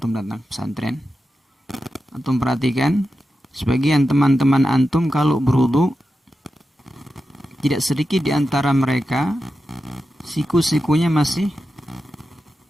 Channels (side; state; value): both; normal; correlation 0.90